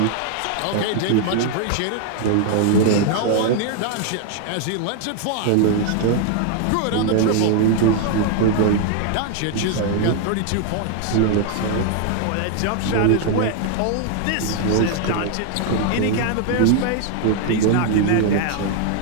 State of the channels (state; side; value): different; both; correlation 0.00